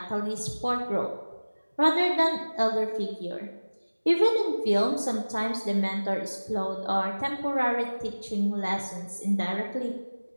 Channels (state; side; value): inverted; both; correlation -1.00